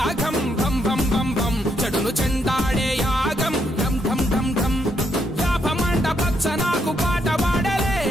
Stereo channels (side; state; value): both; normal; correlation 0.76